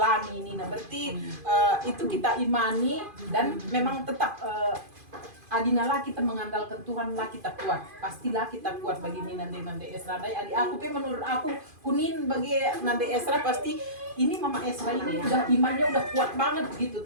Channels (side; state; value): left; late; 2.5 ms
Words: ini. Nah berarti itu kita imani dan memang tetap adinalah kita mengandalkan Tuhan lah kita kuat, pastilah kita kuat bagi Nande Esra. Adik aku menurut aku kunin bagi Nande Esra pasti ini Mama Esra ini udah imannya udah kuat banget gitu,